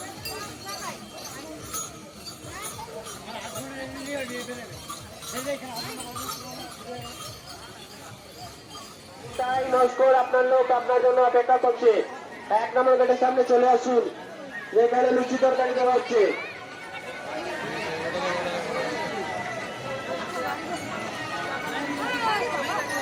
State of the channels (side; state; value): both; identical; correlation 1.00